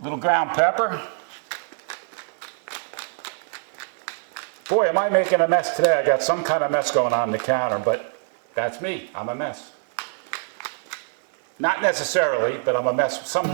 little ground pepper. Boy, am I making a mess today. I got some kind of mess going on the counter, but that's me. I'm a mess. Not necessarily, but I'm a mess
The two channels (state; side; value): silent; left; 56 dB below the other